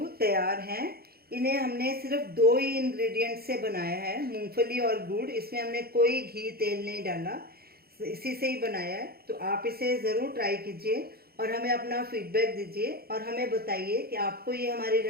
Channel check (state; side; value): late; left; 0.45 ms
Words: तैयार हैं। इन्हें हमने सिर्फ 2 ही इंग्रेडिएंट से बनाया है, मूंगफली और गुड़। इसमें हमने कोई घी तेल नहीं डाला, इसी से ही बनाया है। तो आप इसे ज़रूर ट्राई कीजिए और हमें अपना फीडबैक दीजिए और हमें बताइए कि आपको ये हमारी